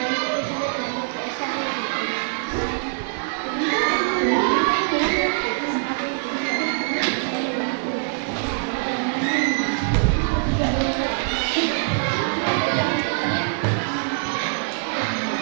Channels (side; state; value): left; silent; digital silence